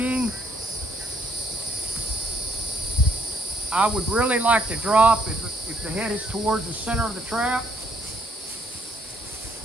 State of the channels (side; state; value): both; normal; correlation 0.69